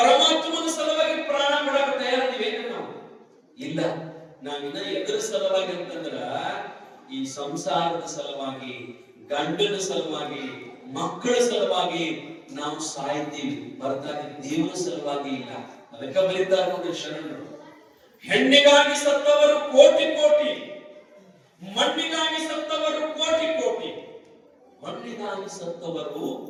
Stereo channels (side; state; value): both; identical; correlation 1.00